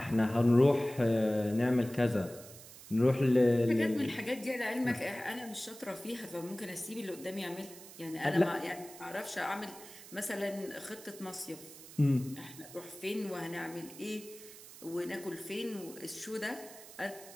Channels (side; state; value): right; noise; hiss, 17 dB below the sound